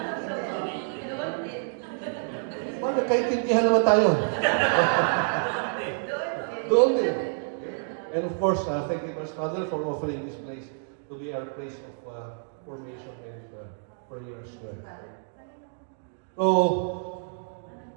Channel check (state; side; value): silent; left; digital silence